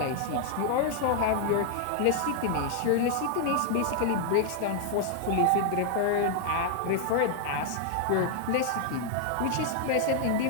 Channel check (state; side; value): different; both; correlation 0.00